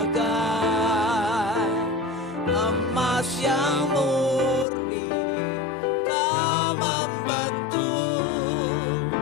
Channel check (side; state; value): right; drops out; at 4.7 s